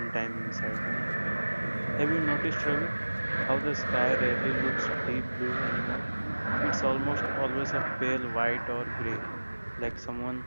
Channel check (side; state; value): both; inverted; correlation -1.00